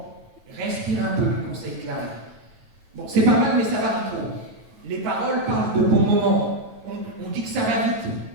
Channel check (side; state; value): left; late; 9.1 ms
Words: respire un peu, conseille Clara. Bon, c'est pas mal, mais ça varie trop. Les paroles parlent de bons moments. On dit que ça va vite.